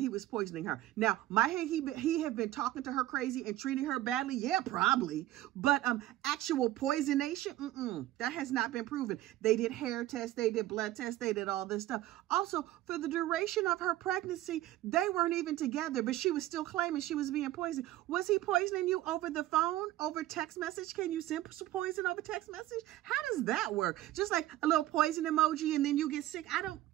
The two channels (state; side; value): quieter; left; 15.1 dB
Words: was poisoning her. Now, he have been talking to her crazy and treating her badly? Yeah, probably. But actual poisonation, that has not been proven. They did hair tests, they did blood tests, they did all this stuff. Also, for the duration of her pregnancy, they weren't even together, but she was still claiming she was being poisoned. Was he poisoning you over the phone, over text message? Can you send some poison over text message? How does that work? Just like a little poison emoji and then you get sick.